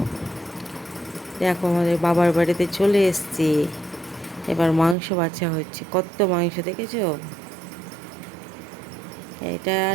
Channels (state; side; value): drops out; left; at 5.0 s